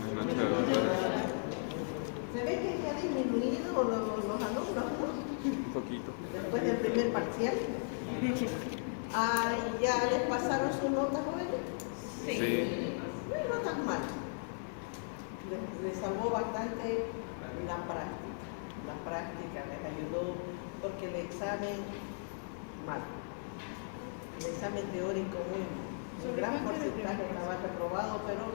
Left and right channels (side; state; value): right; silent; 53 dB below the other